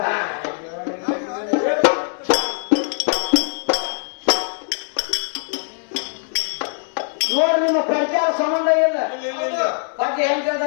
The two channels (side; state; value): right; silent; digital silence